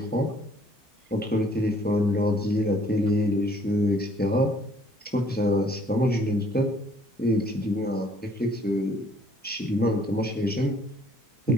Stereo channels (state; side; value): normal; both; correlation 0.61